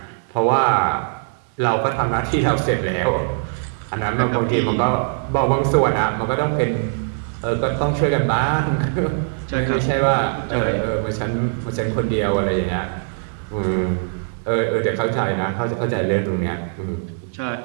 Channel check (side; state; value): left; silent; 65 dB below the other